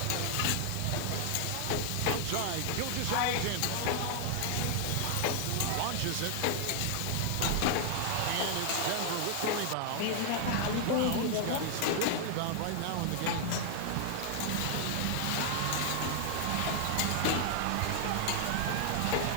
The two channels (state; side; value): different; both; correlation 0.00